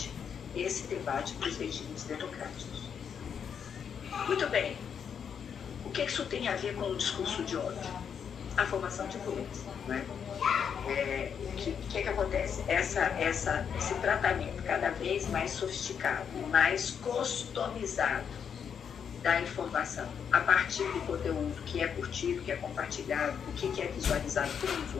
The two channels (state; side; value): quieter; right; 7.4 dB